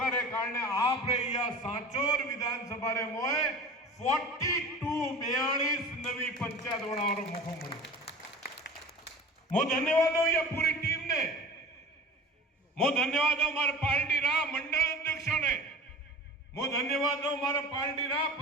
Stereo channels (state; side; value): normal; both; correlation 0.37